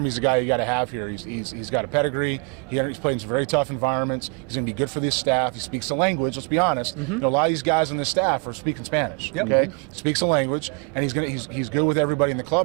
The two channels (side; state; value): left; quieter; 35.8 dB